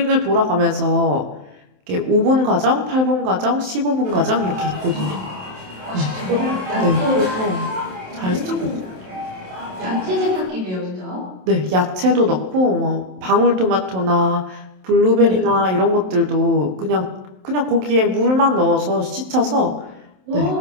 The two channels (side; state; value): left; late; 27 ms